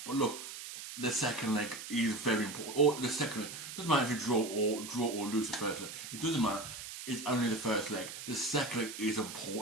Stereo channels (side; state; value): right; noise; hiss, 10 dB below the sound